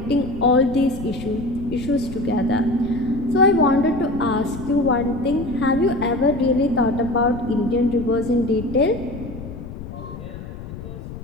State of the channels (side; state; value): left; noise; rumble, 11 dB below the sound